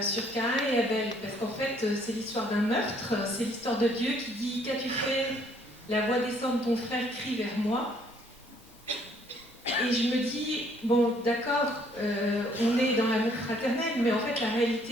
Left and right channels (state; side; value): normal; both; correlation 0.64